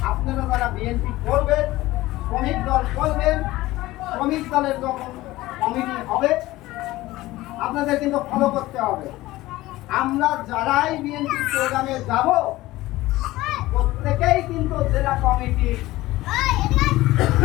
আপনারা যারা বিএনপি করবেন, শ্রমিক দল করবেন, শ্রমিক দলের যখন কমিটি হবে আপনাদের কিন্তু ফলো করতে হবে। আমরা যারাই বিএনপি প্রোগ্রামে যাব, প্রত্যেকেই কিন্তু জেলা কমিটি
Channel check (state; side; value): quieter; right; 17.8 dB